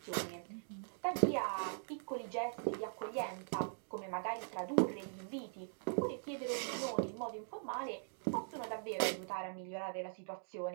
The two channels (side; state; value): left; silent; digital silence